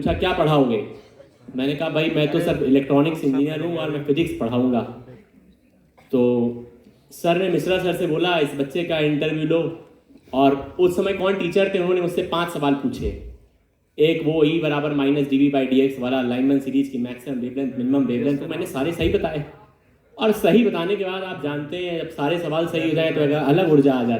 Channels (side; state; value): both; identical; correlation 1.00